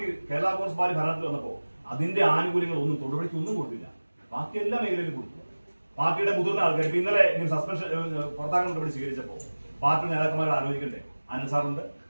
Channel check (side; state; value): both; inverted; correlation -1.00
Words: കേരള കോൺഗ്രസ് പാർട്ടി ഭരണത്തിൽ വന്നപ്പോ അതിന്റെ ആനുകൂല്യങ്ങൾ ഒന്നും തൊടുപുഴയ്ക്ക് ഒന്നും കൊടുത്തില്ല. ബാക്കി എല്ലാ മേഖലയിലും കൊടുത്തു. പാർട്ടിയുടെ മുതിർന്ന ആൾക്കാർ ഇപ്പൊ ഇന്നലെ സസ്പെൻഷൻ പുറത്താക്കാൻ നടപടി സ്വീകരിച്ചപ്പോ പാർട്ടി നേതാക്കന്മാർ ആലോചിക്കണ്ടേ? അനസാറുണ്ട്,